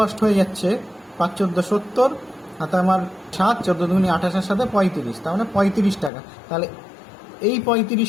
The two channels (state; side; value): drops out; right; at 6.1 s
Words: হয়ে যাচ্ছে 5 14 70, হাতে আমার 7 14 দুগুনি 28 সাথে 35, তার মানে 35 টাকা। তাহলে এই